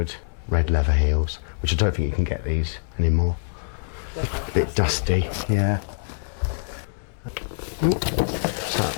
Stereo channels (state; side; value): silent; right; 62 dB below the other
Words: red leather heels, which I don't think you can get these anymore. A bit dusty, yeah. So,